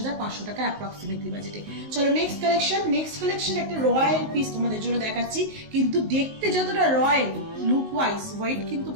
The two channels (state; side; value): late; left; 19 ms